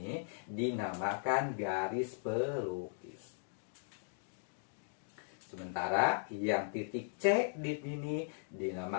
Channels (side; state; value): right; silent; digital silence